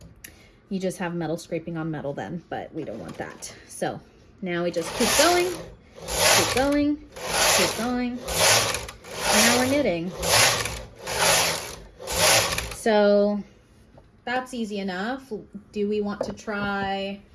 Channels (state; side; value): identical; both; correlation 1.00